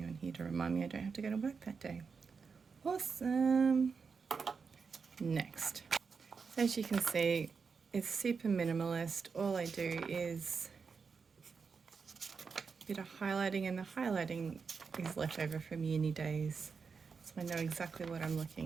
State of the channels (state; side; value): quieter; left; 5.4 dB